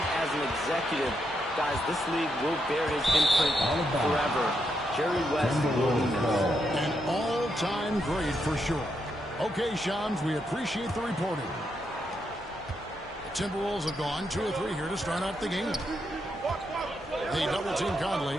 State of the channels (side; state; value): both; normal; correlation 0.81